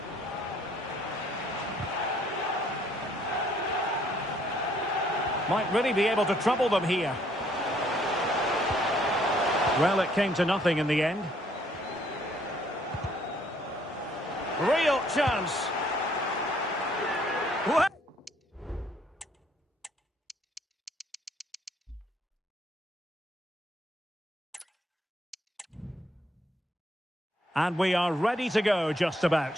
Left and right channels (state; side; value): normal; both; correlation 0.65